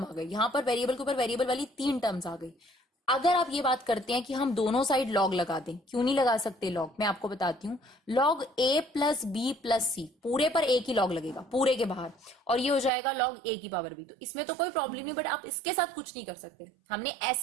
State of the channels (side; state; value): left; drops out; at 12.9 s